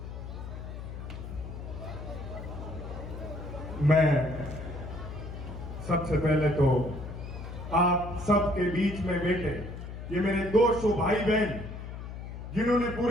मैं सबसे पहले तो आप सबके बीच में बैठे ये मेरे 200 भाई बहन जिन्होंने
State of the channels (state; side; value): noise; left; hum, 9 dB below the sound